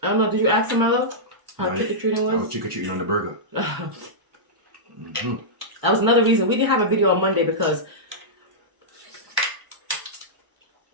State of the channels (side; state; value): left; late; 1.0 ms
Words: I don't know. Did you ask him, my love? How trick-or-treating was? I was trick-or-treating on the burger. That was another reason we didn't have a video on Monday, because